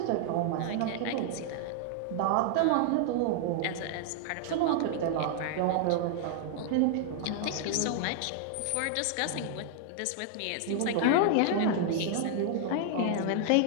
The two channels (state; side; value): different; both; correlation 0.00